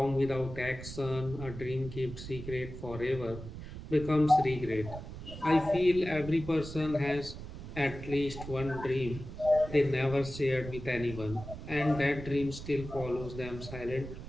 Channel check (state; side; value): noise; right; rumble, 11 dB below the sound